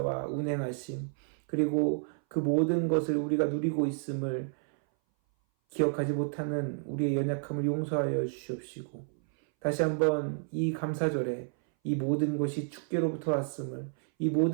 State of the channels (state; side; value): silent; left; 57 dB below the other